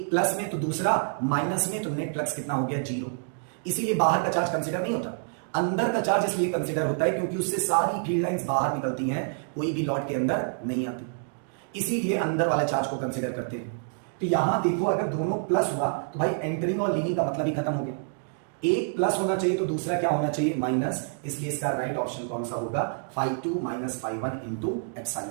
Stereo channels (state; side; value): silent; left; digital silence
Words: प्लस में तो दूसरा माइनस में, तो नेट फ्लक्स कितना हो गया, 0। इसीलिए बाहर का चार्ज कंसिडर नहीं होता। अंदर का चार्ज इसलिए कंसिडर होता है क्योंकि उससे सारी फील्ड लाइंस बाहर निकलती हैं, कोई भी लॉट के अंदर नहीं आती, इसीलिए अंदर वाले चार्ज को कंसिडर करते हैं। तो यहां देखो अगर दोनों प्लस हुआ तो भाई एंटरिंग और लीविंग का मतलब ही खत्म हो गया। एक प्लस होना चाहिए तो दूसरा क्या होना चाहिए, माइनस। इसलिए इसका राइट ऑप्शन कौन सा होगा, φ2 माइनस φ1 इंटू